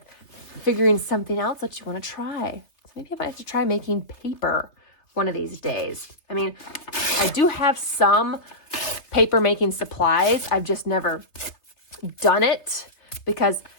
figuring something else that you want to try. So maybe I might have to try making paper one of these days. I mean, I do have some paper making supplies. I've just never done it because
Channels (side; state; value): right; late; 3.3 ms